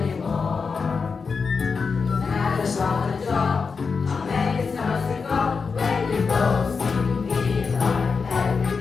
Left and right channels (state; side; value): quieter; right; 5.1 dB